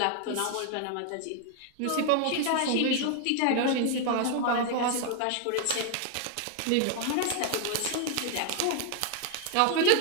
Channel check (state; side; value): different; both; correlation 0.00